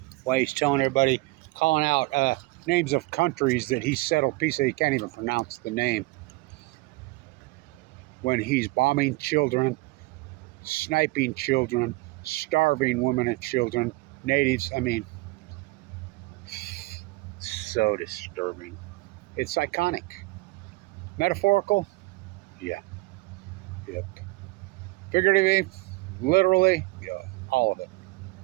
while he's telling everybody, calling out names of countries that he settled peace. He can't even pronounce the name. When he's bombing children, sniping children, starving women and children, natives. I mean, so disturbing. It's iconic. Metaphorical? Yeah. Yep. Figuratively, literally, yeah, all of it.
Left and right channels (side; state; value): left; quieter; 22.8 dB